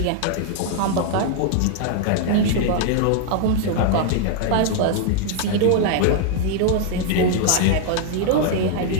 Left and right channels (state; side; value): different; both; correlation 0.00